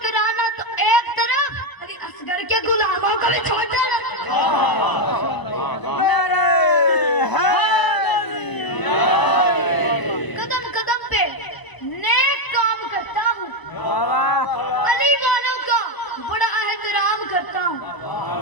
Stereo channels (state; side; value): late; right; 1.0 ms